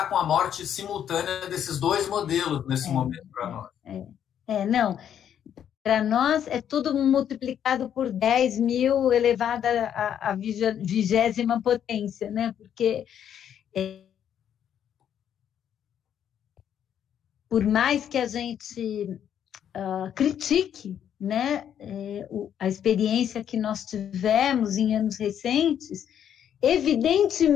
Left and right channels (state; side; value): quieter; right; 9.4 dB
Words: com a morte simultânea desses dois modelos nesse momento para nós. Não, para nós é tudo multiplicado por 10 mil elevado à 20ª potência, né? Porque por mais que a gente critique, né, a experiência que nós tivemos em anos recentes,